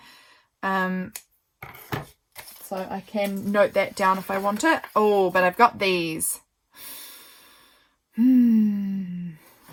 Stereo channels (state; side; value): identical; both; correlation 1.00